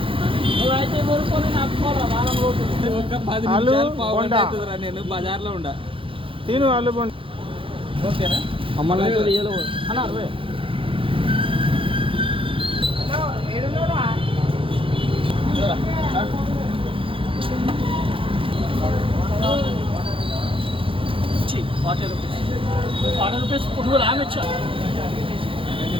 నువ్వైతే కోరుకొని నాకు పోరా వారం రోజులు. నేను బజార్లో ఉండా తిను ఆలు బొండ. ఓకేనా అమ్మాయి అన్న 60. ₹40 పుట్టుకులు ఆమె ఇచ్చా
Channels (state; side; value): late; left; 0.25 ms